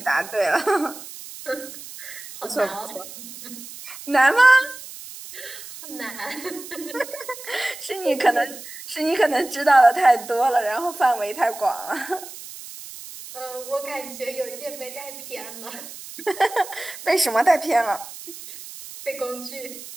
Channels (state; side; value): noise; right; hiss, 14 dB below the sound